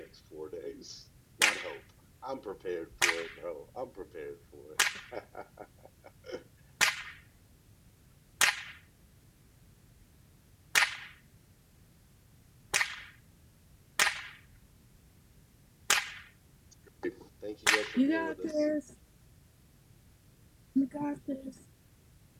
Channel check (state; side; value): identical; both; correlation 1.00